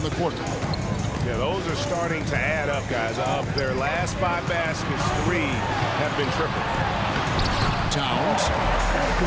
the quarter. Yeah, those are starting to add up, guys. Of their last 5 baskets, 3 have been triple. Towns.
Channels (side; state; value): both; identical; correlation 1.00